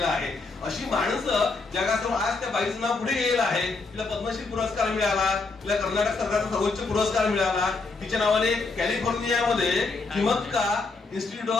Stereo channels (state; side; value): quieter; right; 3.9 dB